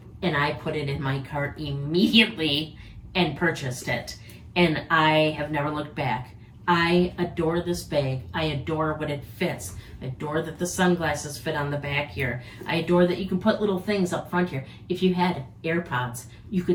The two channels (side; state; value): both; identical; correlation 1.00